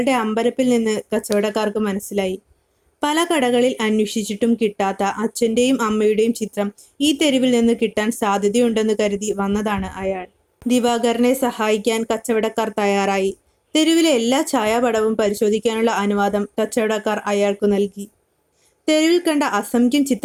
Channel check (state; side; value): identical; both; correlation 1.00